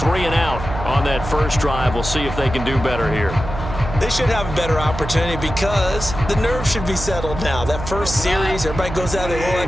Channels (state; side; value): noise; right; hum, 8 dB below the sound